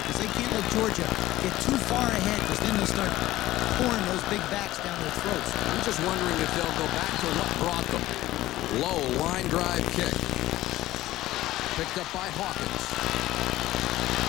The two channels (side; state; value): right; quieter; 15.9 dB